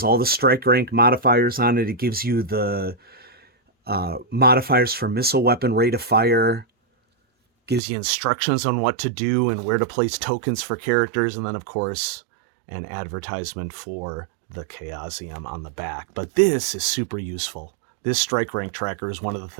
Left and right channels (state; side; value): drops out; left; at 7.8 s